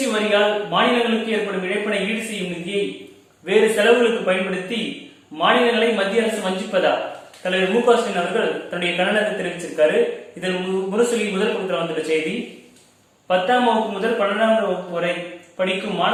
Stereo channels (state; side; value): identical; both; correlation 1.00